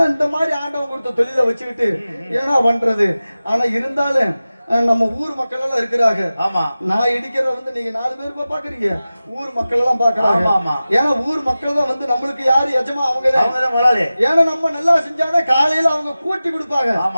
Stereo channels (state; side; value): inverted; both; correlation -0.96